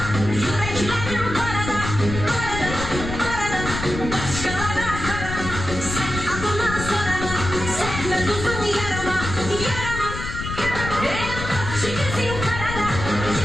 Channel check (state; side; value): noise; left; rumble, 6 dB below the sound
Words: yüreklerim karada, karada, karada. Başkalara karama, sen adına sorama, sevme tuzun yarama, yarama. Çiğnetin karada,